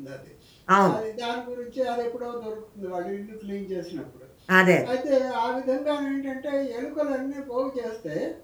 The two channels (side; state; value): both; identical; correlation 1.00